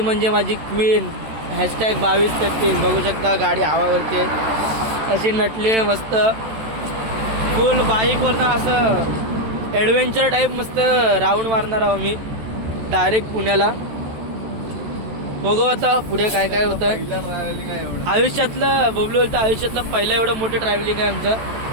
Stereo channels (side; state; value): left; late; 13 ms